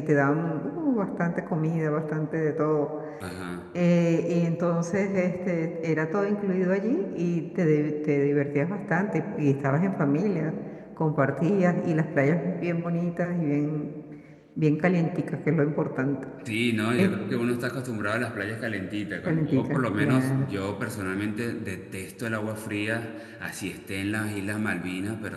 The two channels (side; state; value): both; identical; correlation 1.00